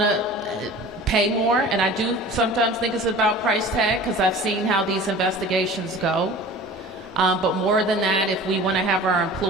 to pay more, and I do sometimes think it's about price tag because I've seen how these investigations go. But more than that, if we want to have our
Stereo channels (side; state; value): both; normal; correlation 0.40